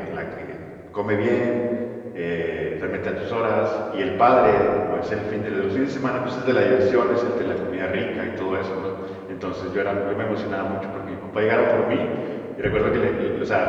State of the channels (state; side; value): identical; both; correlation 1.00